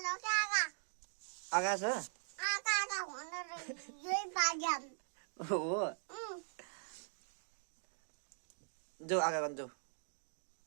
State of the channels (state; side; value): silent; left; digital silence